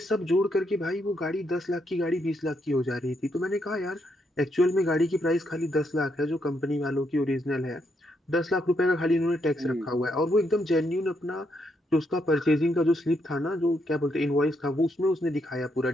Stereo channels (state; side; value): normal; both; correlation 0.77